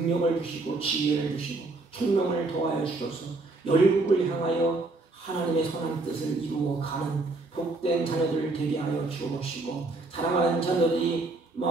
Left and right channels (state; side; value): quieter; left; 3.3 dB